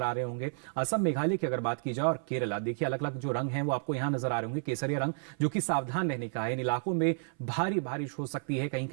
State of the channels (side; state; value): left; silent; 55 dB below the other